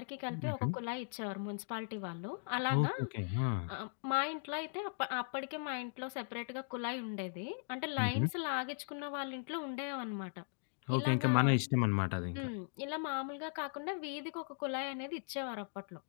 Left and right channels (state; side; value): silent; right; digital silence